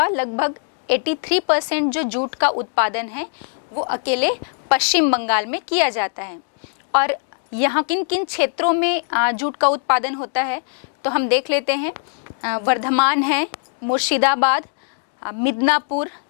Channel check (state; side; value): silent; right; 65 dB below the other